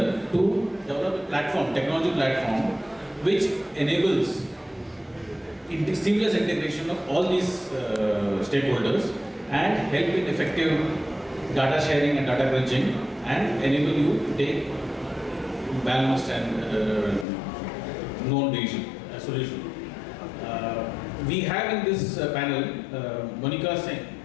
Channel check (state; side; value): drops out; right; at 17.2 s